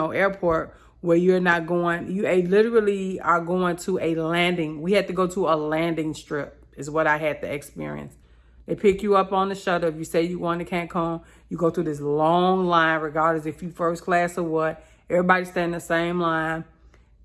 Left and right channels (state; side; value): identical; both; correlation 1.00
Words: airport where you're not going. You literally are going to a landing. We had to go to a landing strip is what I had to experience. They pick you up on the shuttle. If you say you're going to Cancun, you go through this long line, regardless if you first class or what. Everybody stand in the same line.